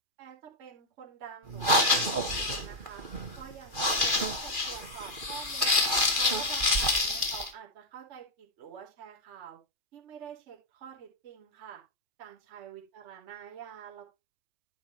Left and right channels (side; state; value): left; late; 2.5 ms